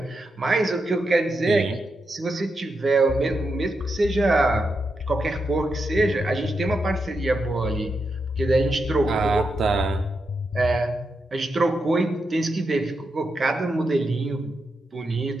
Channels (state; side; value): normal; both; correlation 0.85